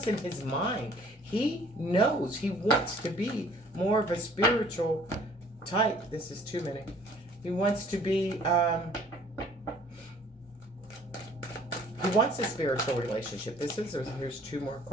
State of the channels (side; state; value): both; normal; correlation 0.55